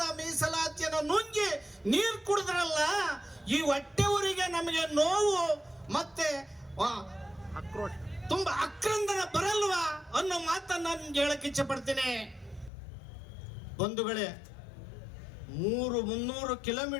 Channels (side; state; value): right; drops out; at 12.7 s